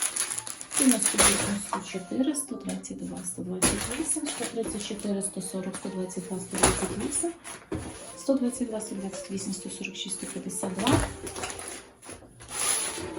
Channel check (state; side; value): identical; both; correlation 1.00